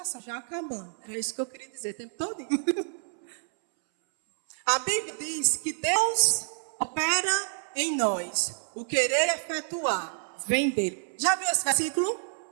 já acabando. Era isso que eu queria dizer o tempo todo. A Bíblia diz que Deus opera em nós. O querer efetuar vem dele. Já viu esse versículo?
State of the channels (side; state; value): left; silent; 59 dB below the other